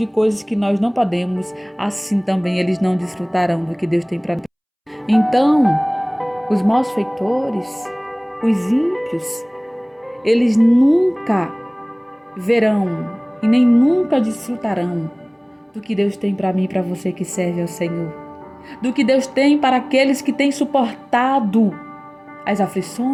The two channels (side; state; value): both; identical; correlation 1.00